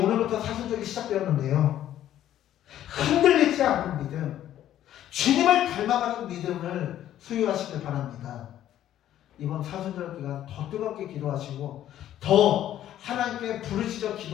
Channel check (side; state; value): right; quieter; 11.9 dB